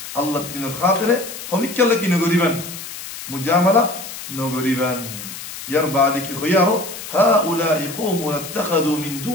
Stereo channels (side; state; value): left; noise; hiss, 11 dB below the sound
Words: الله الدين الخاطرة خميك لكي نقريبا مجاملة نغريبان يربع خيارو هؤلاء قوم اتخذوا من